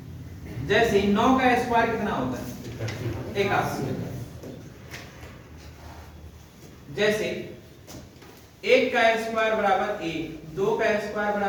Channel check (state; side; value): identical; both; correlation 1.00